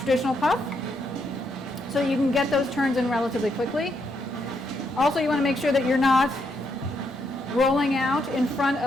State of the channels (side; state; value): both; normal; correlation 0.77